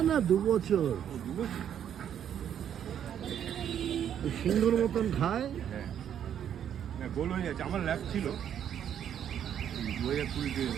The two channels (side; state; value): left; quieter; 9.4 dB